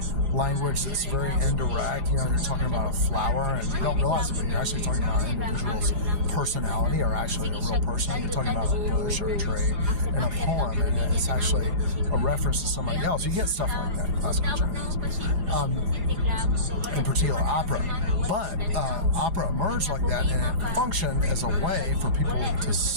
language that's very indirect. You're talking about a flower, and you don't realize it, but you're actually talking about an individual's personality, or actually a real person. You're talking about a bush or a tree in a poem, and it's actually a reference to somebody else. You get stuff like that in classical Chinese, in particular opera. But opera emerged like that, and it functioned as a way for people to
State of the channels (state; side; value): late; left; 4.9 ms